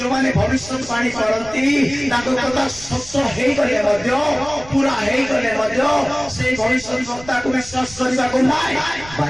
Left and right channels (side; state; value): right; noise; rumble, 18 dB below the sound